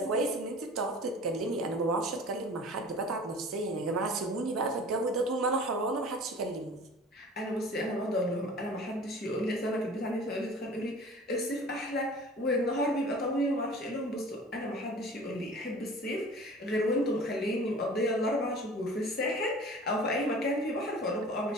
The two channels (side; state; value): both; normal; correlation 0.43